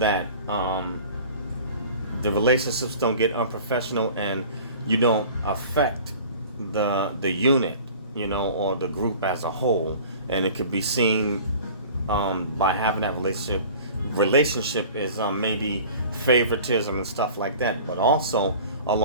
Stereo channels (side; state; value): both; inverted; correlation -0.43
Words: the relationships don't get unprofessional, and you don't affect the unit, or the group as a whole. And it could be seen by having that relationship is maybe favoritism and stuff like that. But also